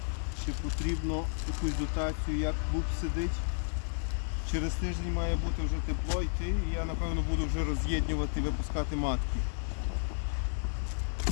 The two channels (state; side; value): silent; right; digital silence